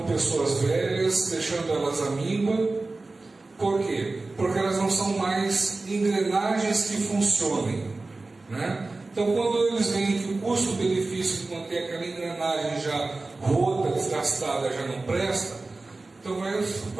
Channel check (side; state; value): left; quieter; 3.3 dB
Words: pessoas velhas, deixando elas à míngua. Por quê? Porque elas não são mais engrenagens que funcionem, né? Então, quando eles veem que o custo-benefício de manter aquela engrenagem já rota, desgastada, já não presta, então vai